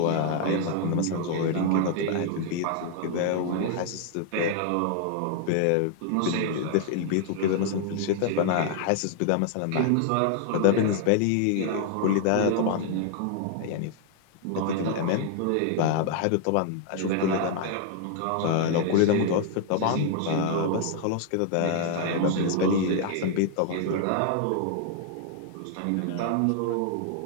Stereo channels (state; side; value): different; both; correlation 0.00